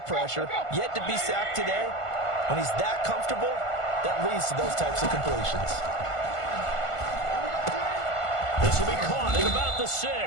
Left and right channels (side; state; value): right; late; 1.5 ms